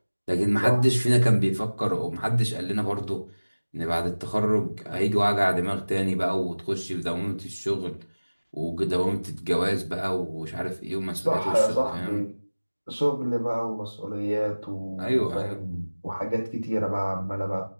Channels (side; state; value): both; inverted; correlation -1.00